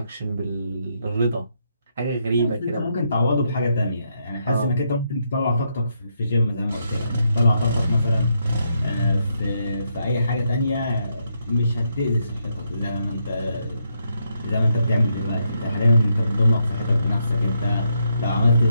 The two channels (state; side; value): inverted; both; correlation -0.79